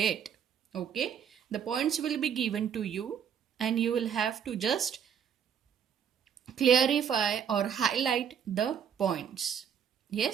Okay? The points will be given to you and you will have to just clarify or highlight the points.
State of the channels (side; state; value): left; quieter; 8.1 dB